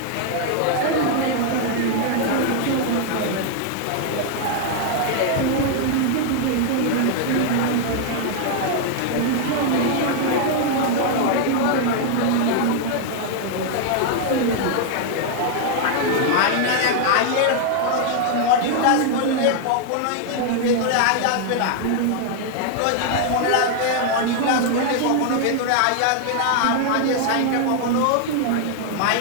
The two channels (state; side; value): different; both; correlation 0.00